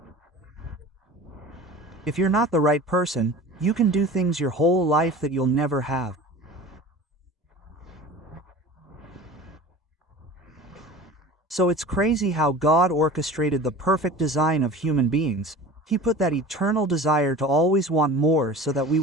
If you're not the right person, you can do things your whole life that you'll never have. So it's crazy how God orchestrated the perfect design of human beings. He put that eternal desire to always want more so that we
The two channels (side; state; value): both; normal; correlation 0.38